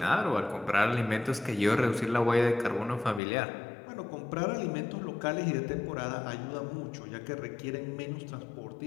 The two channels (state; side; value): drops out; right; at 3.2 s